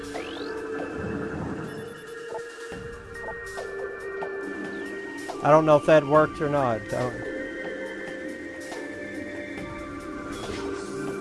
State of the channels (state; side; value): identical; both; correlation 1.00